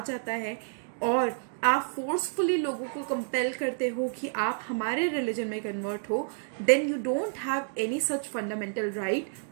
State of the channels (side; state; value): left; silent; digital silence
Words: जाता है और आप फोर्सफुली लोगों को कंपेल करते हो कि आप हमारे रिलीजन में कन्वर्ट हो, then you don't have any such fundamental right